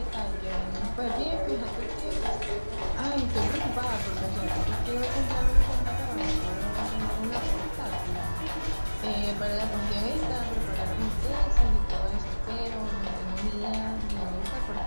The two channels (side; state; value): both; inverted; correlation -1.00